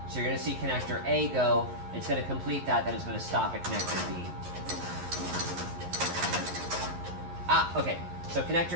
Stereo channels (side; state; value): left; late; 11 ms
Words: So you're going to see connector A go. It's going to complete that, then it's going to stop at connector B. Okay. So